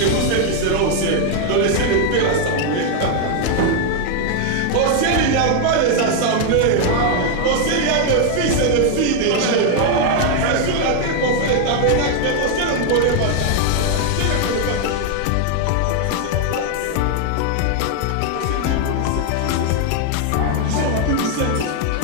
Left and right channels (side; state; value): both; different; correlation 0.00